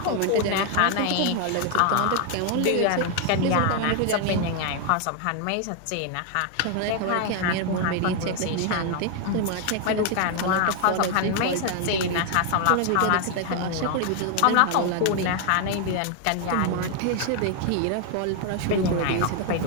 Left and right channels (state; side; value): different; both; correlation 0.00